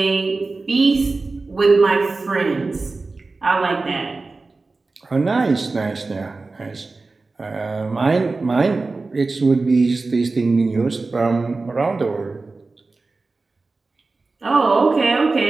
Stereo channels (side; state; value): left; quieter; 3.7 dB